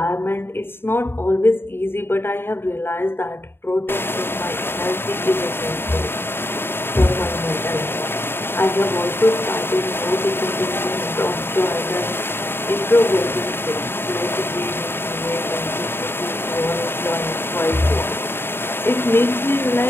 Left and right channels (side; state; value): right; late; 0.11 ms